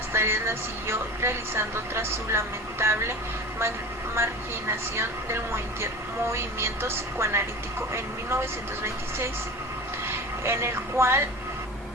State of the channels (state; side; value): normal; both; correlation 0.33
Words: tareas las siguió realizando tras su lamentable marginación del movimiento psicoanalítico en 1926,